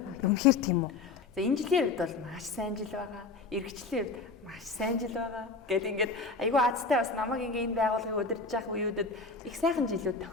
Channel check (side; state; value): right; quieter; 4.1 dB